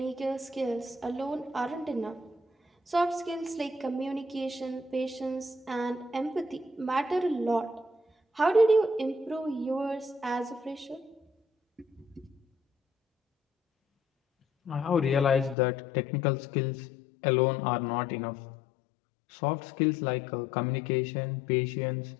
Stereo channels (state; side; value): drops out; right; at 15.6 s